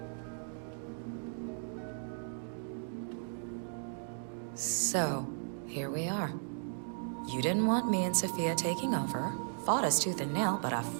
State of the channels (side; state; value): left; silent; digital silence